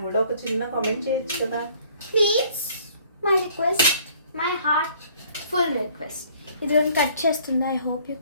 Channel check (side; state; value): both; inverted; correlation -0.57